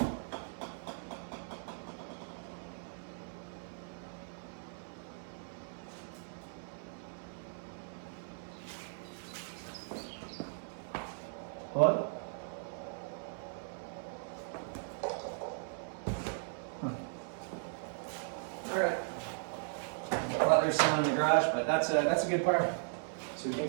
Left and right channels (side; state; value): left; silent; 53 dB below the other